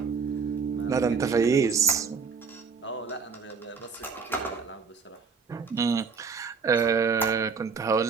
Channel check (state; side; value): quieter; left; 5.3 dB